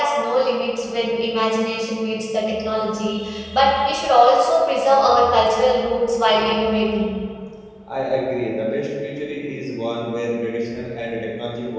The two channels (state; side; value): identical; both; correlation 1.00